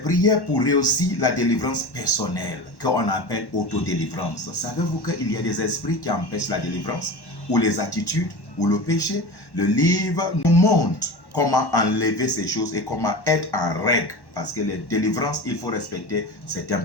prier pour réussir la délivrance personnelle, qu'on appelle autodélivrance. Savez-vous qu'il y a des esprits qui empêchent la délivrance, ou les attitudes, ou le péché? Le livre nous montre comment enlever ces choses et comment être en règle. Parce que les délivrances, il faut respecter certains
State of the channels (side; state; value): right; late; 1.1 ms